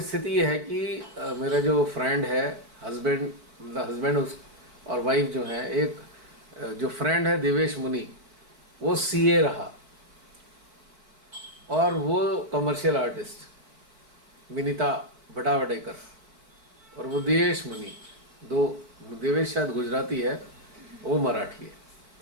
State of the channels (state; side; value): late; left; 4.4 ms